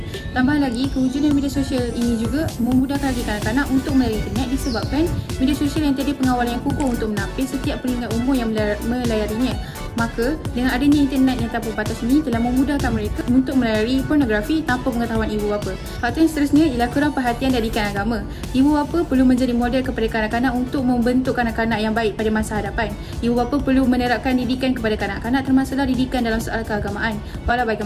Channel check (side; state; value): both; identical; correlation 1.00